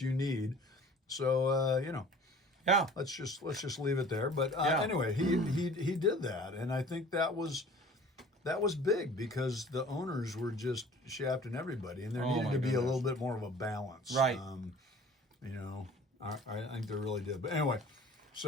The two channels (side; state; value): both; normal; correlation 0.47